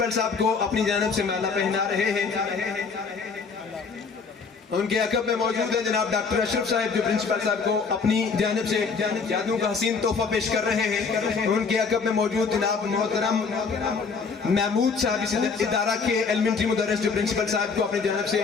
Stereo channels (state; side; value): quieter; right; 5.1 dB